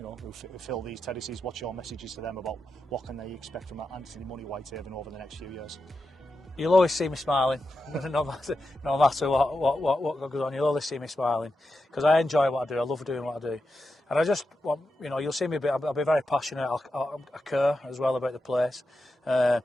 fill these terraces? What's your messages to them about what can they expect from Anthony Money Whitehaven over the next few years? You'll always see me smiling, no matter what goes on. You'll always see me smiling because I enjoy what I do. I love doing what I do, and I just want you'll see me. I'll be very passionate. I care as well about the place, and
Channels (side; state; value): both; normal; correlation 0.88